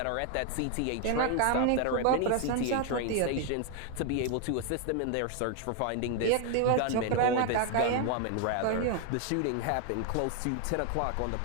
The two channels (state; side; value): different; both; correlation 0.00